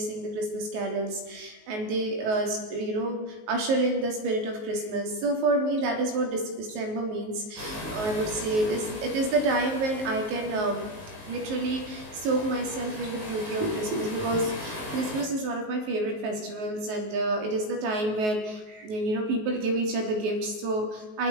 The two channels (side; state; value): left; late; 19 ms